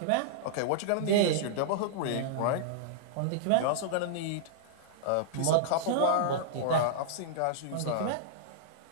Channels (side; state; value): both; different; correlation -0.02